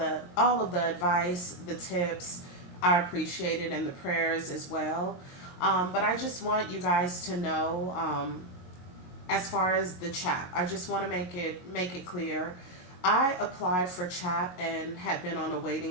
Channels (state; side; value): late; right; 22 ms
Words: of the advice, the tips. I appreciate it, and the prayers as well. But I just want you guys to know, as far as the CHAP, I just want to make it clear. I applied for CHAP and had been on a